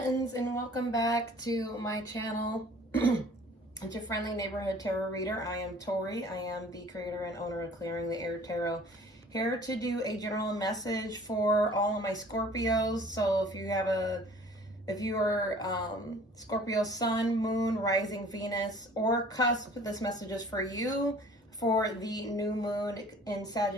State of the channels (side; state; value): both; normal; correlation 0.50